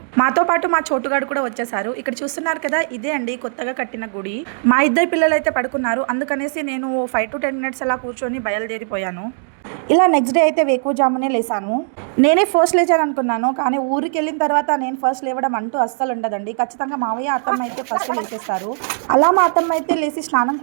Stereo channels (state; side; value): silent; left; digital silence